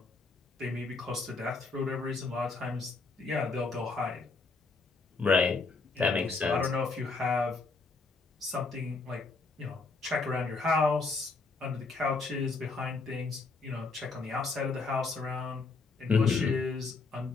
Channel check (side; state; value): right; quieter; 4.0 dB